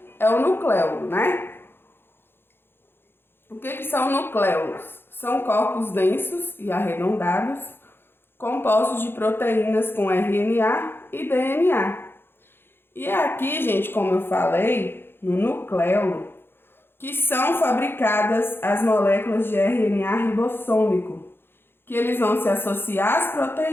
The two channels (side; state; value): right; late; 0.10 ms